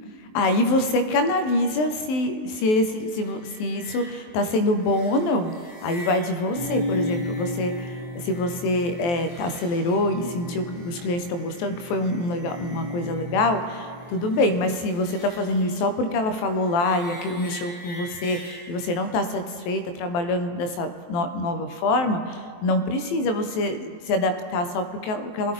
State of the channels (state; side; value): late; right; 23 ms